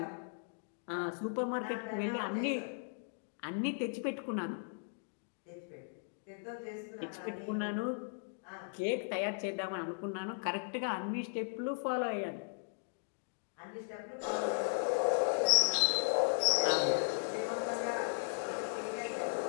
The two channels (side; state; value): right; silent; digital silence